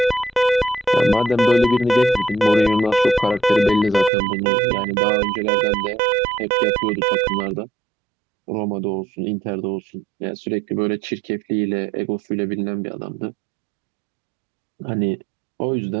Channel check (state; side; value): drops out; left; at 4.1 s